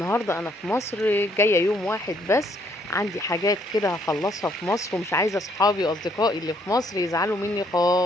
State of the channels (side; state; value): both; normal; correlation 0.68